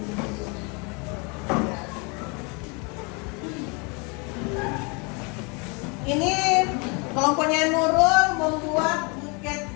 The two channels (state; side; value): quieter; right; 30.2 dB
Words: Ini kelompoknya Nurul membuat buket